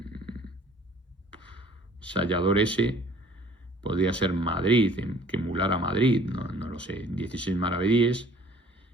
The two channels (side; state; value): both; normal; correlation 0.54